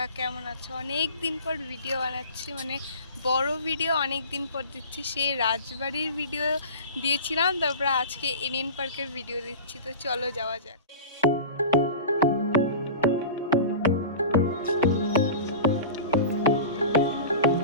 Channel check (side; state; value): both; inverted; correlation -0.34